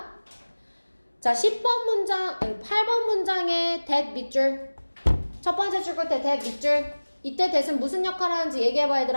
자, 8번 문장에 that 밑줄. 첫 번째 줄 끝에 that 밑줄. 이때 that은 무슨 역할을 하는지 얘기해봐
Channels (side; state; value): both; inverted; correlation -1.00